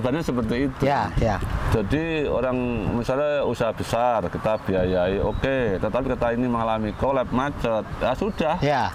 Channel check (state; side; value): identical; both; correlation 1.00